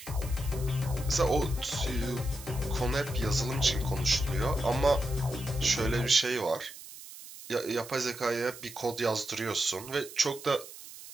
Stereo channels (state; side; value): noise; right; hiss, 15 dB below the sound